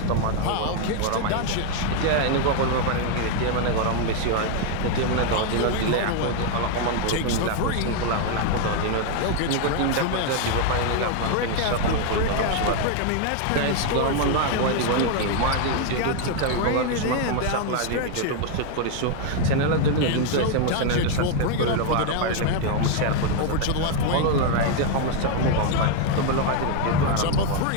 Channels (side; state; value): both; different; correlation 0.00